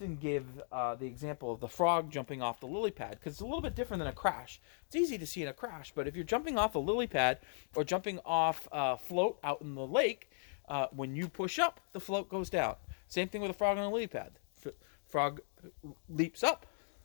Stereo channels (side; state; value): right; silent; digital silence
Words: give the example of the frog jumping off the lily pad because it's a little bit different than a crash. It's easy to see in a crash, but if you're jumping off a lily pad or jumping off a float out in the lake, when you push up, the float goes down. Same thing with a frog on a lily pad. Frog leaps up,